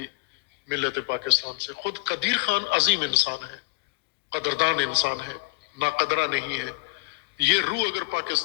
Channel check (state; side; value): quieter; right; 24.5 dB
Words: ملت پاکستان سے. خود قدیر خان عظیم انسان ہے، قدردان انسان ہے، ناقدرہ نہیں ہے. یہ روح اگر